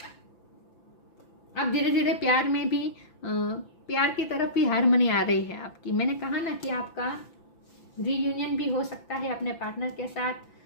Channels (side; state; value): right; late; 5.9 ms